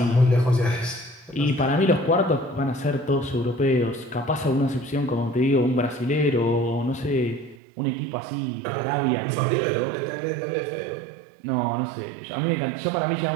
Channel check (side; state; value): left; drops out; at 7.6 s